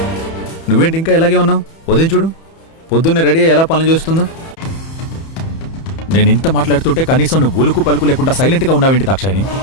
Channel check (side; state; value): right; late; 31 ms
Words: నువ్వేంటి ఇంకా ఇలాగే ఉన్నావు? ఉదయం చూడు, పొద్దున్నే రెడీ అయ్యి ఎలా పనులు చేస్తుందో. నేను ఇంత మాట్లాడుతుంటే కనీసం నువ్వు ఉలుకు పలుకు లేకుండా సైలెంట్గా ఉన్నావేంటి దాక్షాయిని?